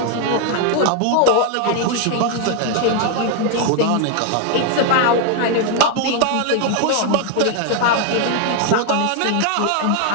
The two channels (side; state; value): both; different; correlation 0.00